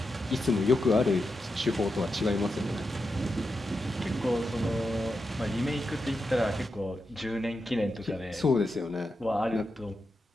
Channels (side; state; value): both; normal; correlation 0.87